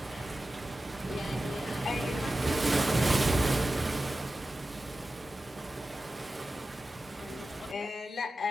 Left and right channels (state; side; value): normal; both; correlation 0.94